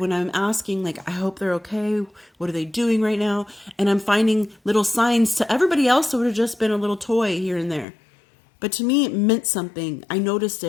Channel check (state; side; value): drops out; right; at 7.9 s